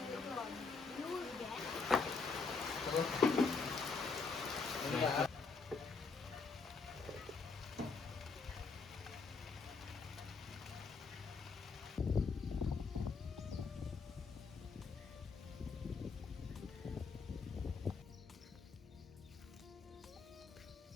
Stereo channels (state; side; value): quieter; right; 4.6 dB